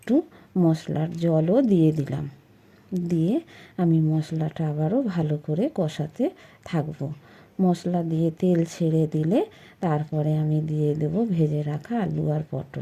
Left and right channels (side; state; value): both; identical; correlation 1.00